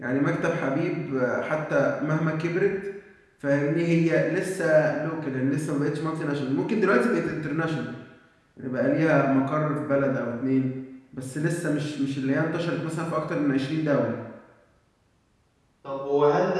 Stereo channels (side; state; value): both; identical; correlation 1.00